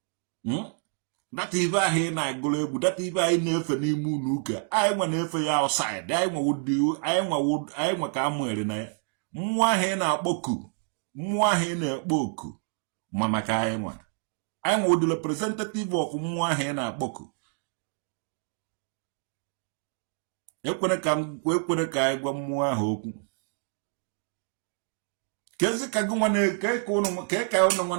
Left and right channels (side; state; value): left; silent; 56 dB below the other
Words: dati ibe ahụ ị na-agụrụ egwu dati ibe anyị na-efe n'ime ụlọ ụka anyị nwa na-efe ya outside anyị nwe ka amụere na ya mmụọ ahụ ị na-akpọku mmụọ ahụ ị na-ekpo oku ma maka anyị nwe ụdị representative of mmụọ ahụ ị na-akpọku ekwere ka anyị gwa mmụọ ahụ okwu kezi ka gị nwa ka ụnụ nwa